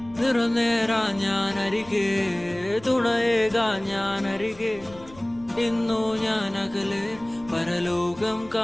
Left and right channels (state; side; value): noise; left; rumble, 22 dB below the sound